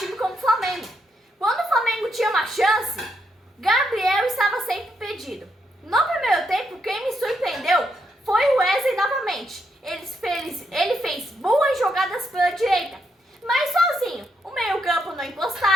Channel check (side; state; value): both; normal; correlation 0.79